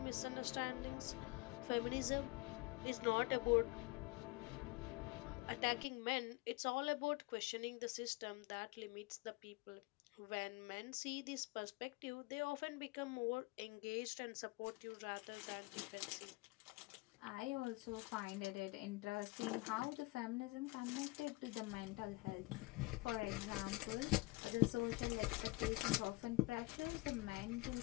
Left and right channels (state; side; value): quieter; right; 23.0 dB